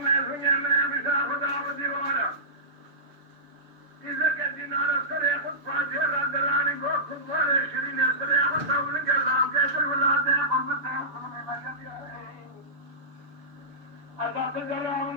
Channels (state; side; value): late; left; 7.0 ms